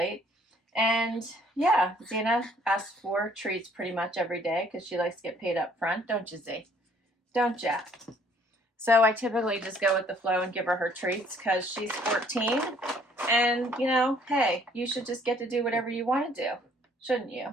And yeah, Xena asks for treats pretty much every day because she likes to get paid up front, don't you, Z? Don't ya? So I typically just go with the flow and give her treats because she's 14. And, you know, hey, you should just get to do whatever you want to do, shouldn't you?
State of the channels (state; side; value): normal; both; correlation 0.61